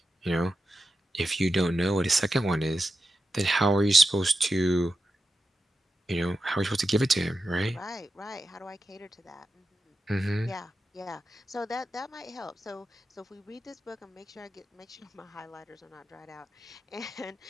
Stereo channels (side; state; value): both; normal; correlation 0.90